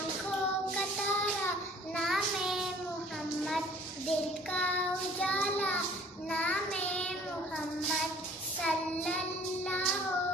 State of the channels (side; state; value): both; normal; correlation 0.53